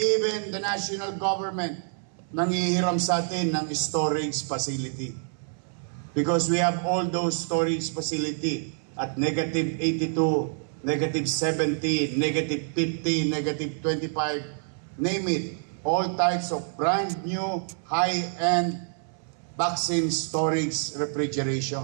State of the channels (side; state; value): left; silent; 60 dB below the other